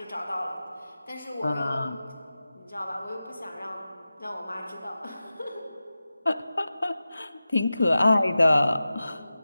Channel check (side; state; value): both; inverted; correlation -0.94